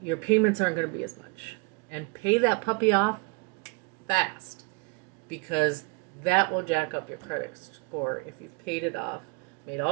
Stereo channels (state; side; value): quieter; left; 30.8 dB